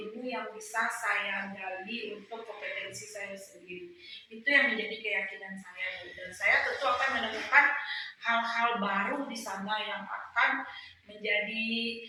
yang bisa saya gali untuk kompetensi saya sendiri. Itu yang menjadi keyakinan saya, Bu. Dan saya tentu akan menemukan hal-hal baru di sana yang akan menjadi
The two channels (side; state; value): both; identical; correlation 1.00